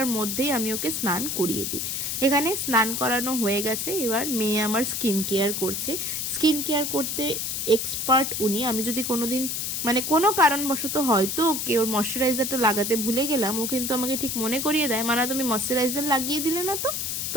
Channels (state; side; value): noise; left; hiss, 2 dB below the sound